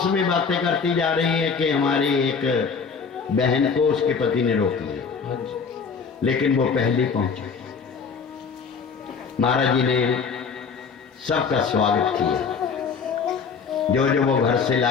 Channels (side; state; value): right; quieter; 5.7 dB